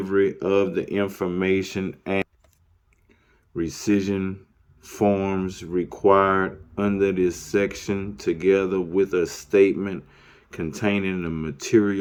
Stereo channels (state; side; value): identical; both; correlation 1.00